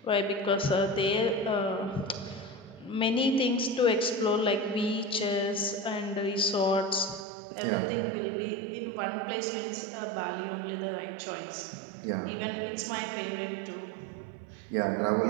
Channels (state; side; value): drops out; left; at 7.2 s